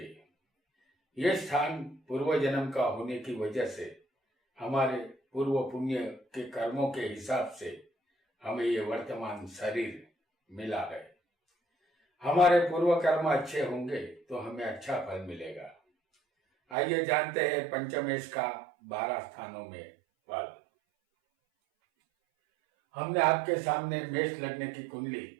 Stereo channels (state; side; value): drops out; left; at 16.8 s